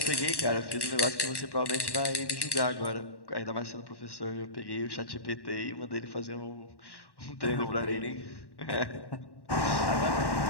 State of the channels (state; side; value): late; right; 1.1 ms